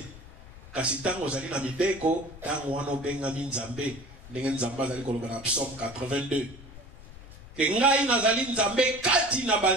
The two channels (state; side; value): noise; left; rumble, 18 dB below the sound